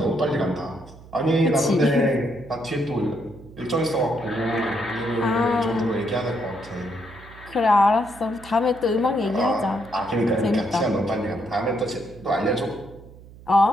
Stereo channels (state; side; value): noise; right; hum, 20 dB below the sound